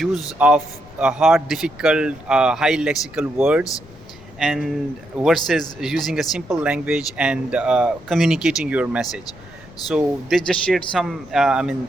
of hard, difficult, high lexical words, and versus using a simple language and communicating your message. So they just shared some,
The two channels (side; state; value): left; noise; rumble, 21 dB below the sound